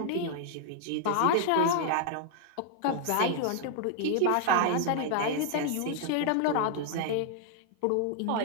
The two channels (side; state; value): both; different; correlation 0.00